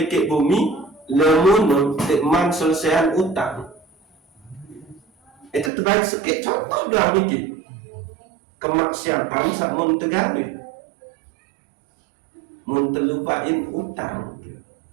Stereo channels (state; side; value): drops out; left; at 5.7 s